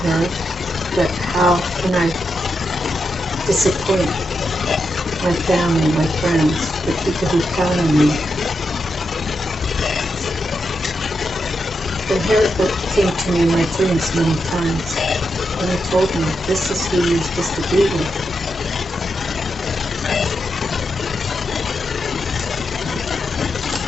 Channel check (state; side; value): normal; both; correlation 0.85